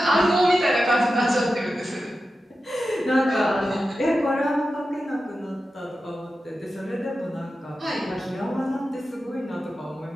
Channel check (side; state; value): both; normal; correlation 0.92